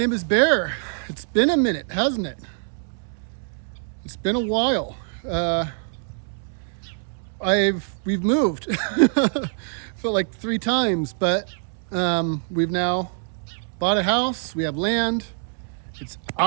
is Bear. It's been a minute, hasn't it? It's been a while. We've moved felt like 3 times, but we've now bought a house. We have land. It's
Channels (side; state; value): left; silent; 62 dB below the other